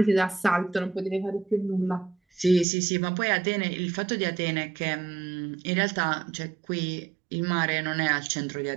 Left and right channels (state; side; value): drops out; left; at 2.7 s